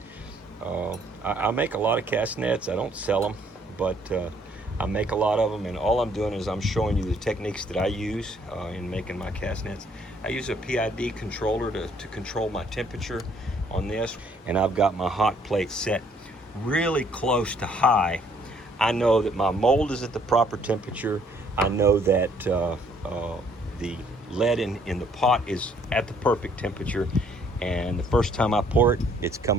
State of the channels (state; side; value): normal; both; correlation 0.64